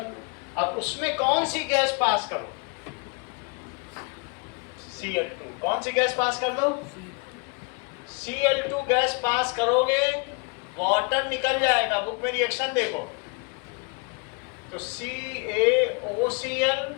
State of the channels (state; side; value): quieter; right; 33.4 dB